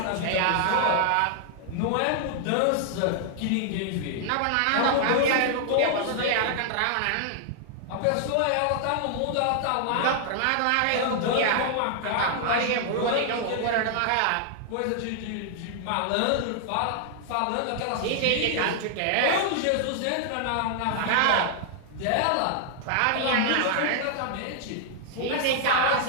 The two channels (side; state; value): both; different; correlation -0.01